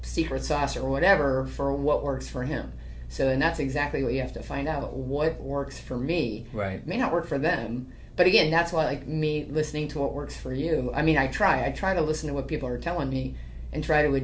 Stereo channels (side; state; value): both; identical; correlation 1.00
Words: secret sauce or whatever for what works for him. So, and that's exactly what you have to find out. What works for me may not work for them. But again, that's why like me listening to what works for you. I mean, I try to listen to what people are telling me and try to